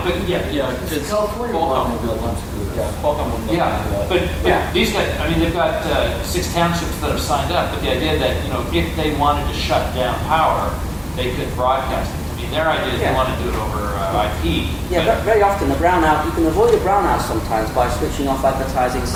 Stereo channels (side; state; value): both; identical; correlation 1.00